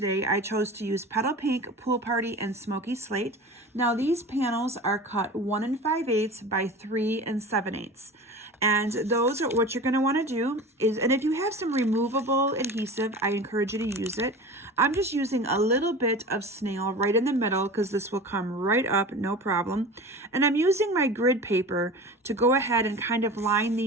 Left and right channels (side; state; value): both; normal; correlation 0.35